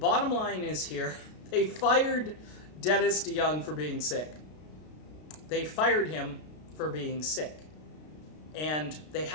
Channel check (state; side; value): late; right; 33 ms